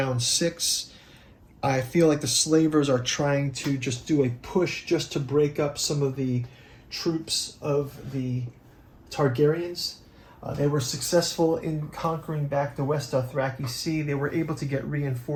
6. I feel like the slavers are trying to just do a push just to break up some of the troops of the Targaryens. They were successful in conquering back the West Dothraki Sea. They were able to get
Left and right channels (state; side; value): identical; both; correlation 1.00